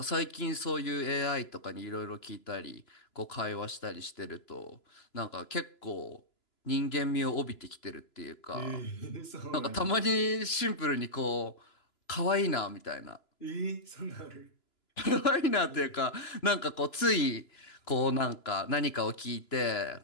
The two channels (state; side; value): late; right; 2.9 ms